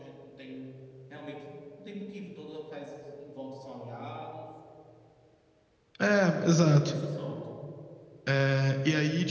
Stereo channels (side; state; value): both; identical; correlation 1.00